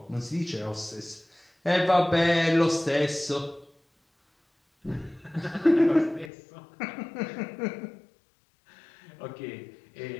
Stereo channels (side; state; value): right; drops out; at 6.3 s